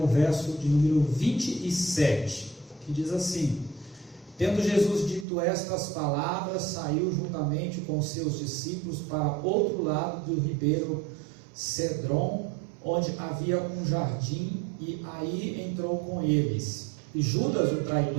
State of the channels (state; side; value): drops out; left; at 5.2 s